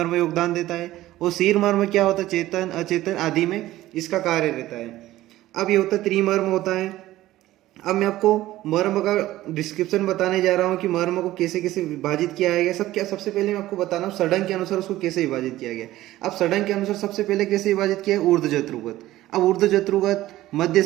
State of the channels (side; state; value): left; quieter; 15.6 dB